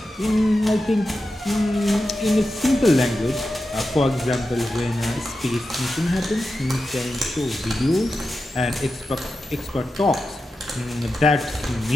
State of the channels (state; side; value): normal; both; correlation 0.91